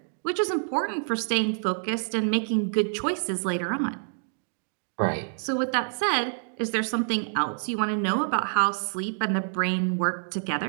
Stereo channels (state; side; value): silent; left; digital silence